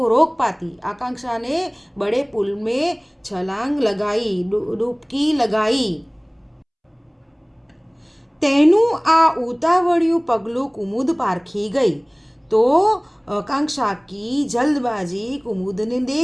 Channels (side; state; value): both; identical; correlation 1.00